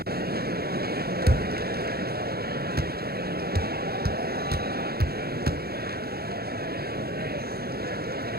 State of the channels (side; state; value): left; late; 0.45 ms